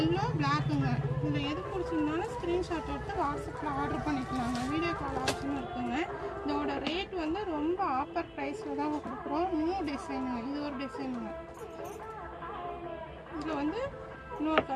பிளாக்குங்க. இதில் எது பிடிச்சிருந்தாலும் ஸ்க்ரீன்ஷாட் எடுத்து வாட்ஸ்அப்பில் ஆர்டர் பண்ணிக்கலாங்க. வீடியோ கால் ஆப்ஷனும் இருக்குங்க. இதோட ரேட் வந்து ரொம்ப ஆஃபர் ப்ரைஸில் தான் கொடுக்குறோம். நியூ டிசைனுங்க. இது ஒரு டிசைனுங்க. இதில் வந்து இன்னொரு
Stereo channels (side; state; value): both; identical; correlation 1.00